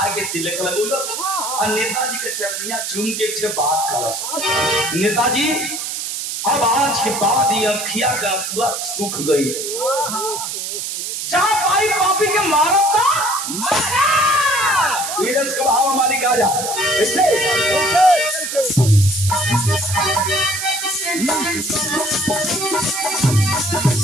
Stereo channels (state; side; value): noise; right; hiss, 4 dB below the sound